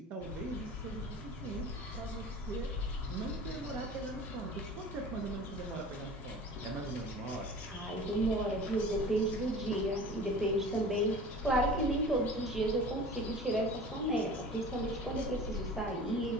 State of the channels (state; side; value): normal; both; correlation 0.41